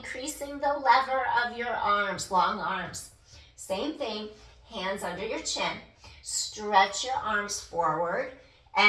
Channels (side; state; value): both; identical; correlation 1.00